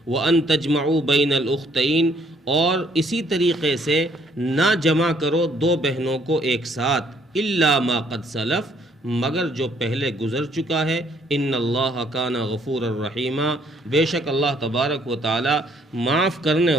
وَأَن تَجْمَعُوا بَيْنَ الْأُخْتَيْنِ اور اسی طریقے سے نہ جمع کرو دو بہنوں کو ایک ساتھ، إِلَّا مَا قَدْ سَلَفَ مگر جو پہلے گزر چکا ہے۔ ان اللہ کان غفور الرحیم بے شک اللہ تبارک و تعالی معاف کرنے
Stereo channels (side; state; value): both; normal; correlation 0.65